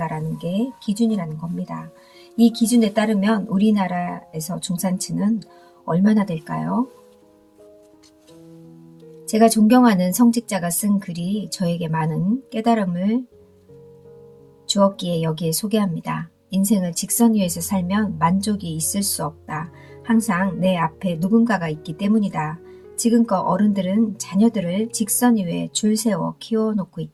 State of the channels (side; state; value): both; identical; correlation 1.00